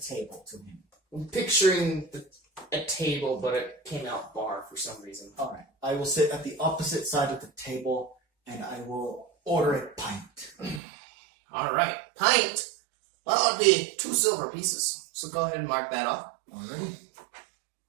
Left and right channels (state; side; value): drops out; left; at 10.8 s